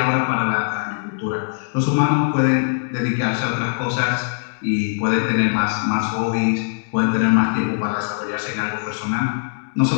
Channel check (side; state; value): right; silent; digital silence